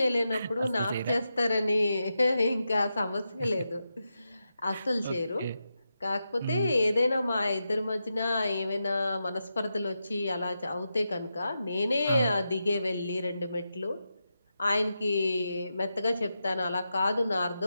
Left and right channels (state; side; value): inverted; both; correlation -0.88